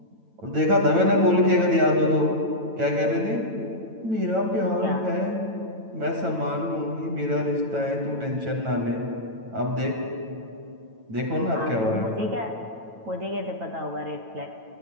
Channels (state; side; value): late; left; 9.0 ms